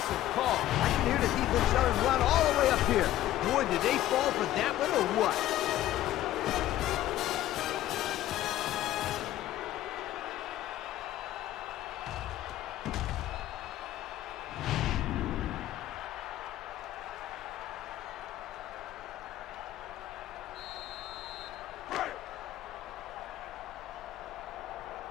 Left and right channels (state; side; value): quieter; right; 13.9 dB